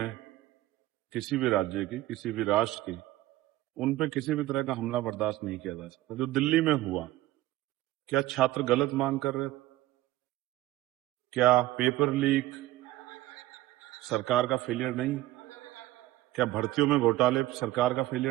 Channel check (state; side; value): quieter; left; 16.2 dB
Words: किसी भी राज्य की, किसी भी राष्ट्र की। उन पे किसी भी तरह का हमला बर्दाश्त नहीं किया जा सकता। जो दिल्ली में हुआ, क्या छात्र गलत मांग कर रहे थे? क्या पेपर लीक सरकार का फेलियर नहीं? क्या भर्तियों में घोटाले सरकार का